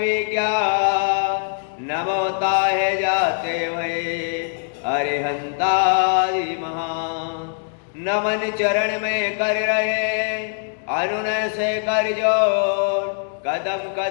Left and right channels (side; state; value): right; silent; digital silence